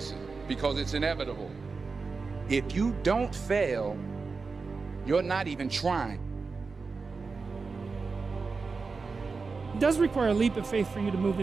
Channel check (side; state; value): left; quieter; 4.5 dB